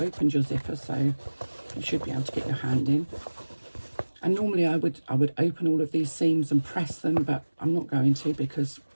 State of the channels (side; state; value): both; inverted; correlation -1.00